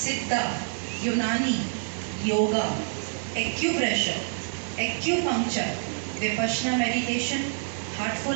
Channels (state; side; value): silent; left; digital silence